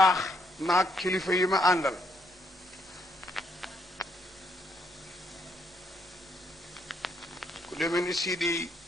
maag kilifa yi ma àndal ku demee ni Sidi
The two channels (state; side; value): normal; both; correlation 0.73